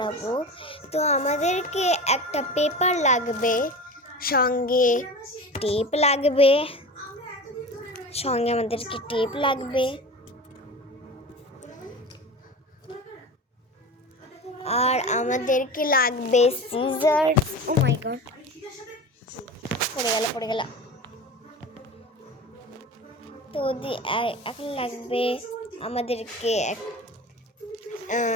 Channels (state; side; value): normal; both; correlation 0.32